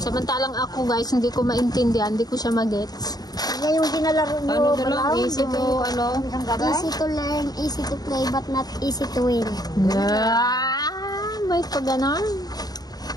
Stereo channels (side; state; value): right; late; 0.19 ms